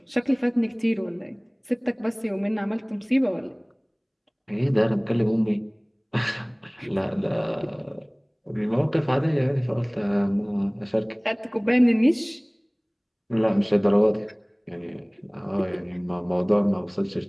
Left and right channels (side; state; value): both; identical; correlation 1.00